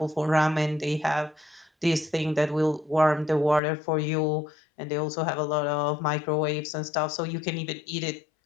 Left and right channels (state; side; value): drops out; right; at 3.6 s